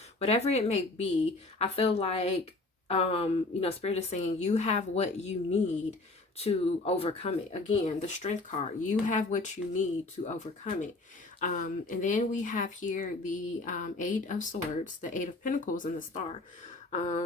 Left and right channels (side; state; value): right; quieter; 3.1 dB